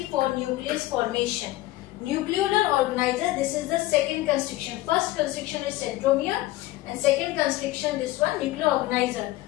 for nucleus formation. Nucleolar organizer, this is the second constriction. First constriction is centromere, and second constriction, this one, nuclear organizer.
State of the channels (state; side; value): quieter; right; 17.1 dB